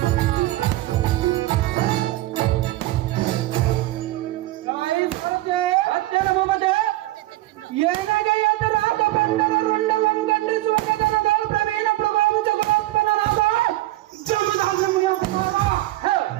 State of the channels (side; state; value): left; quieter; 17.2 dB